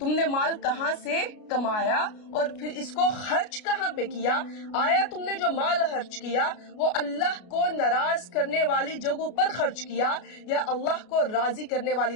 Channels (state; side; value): late; right; 33 ms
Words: نے مال کہاں سے کمایا اور پھر اس کو خرچ کہاں پہ کیا. آیا تم نے جو مال خرچ کیا وہ اللہ کو ناراض کرنے والی جگہوں پر خرچ کیا یا اللہ کو راضی کرنے والی